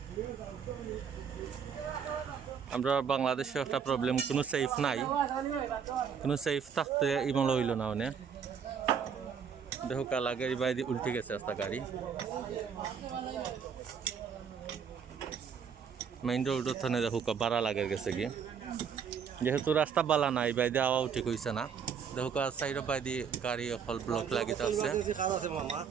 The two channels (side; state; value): left; quieter; 6.9 dB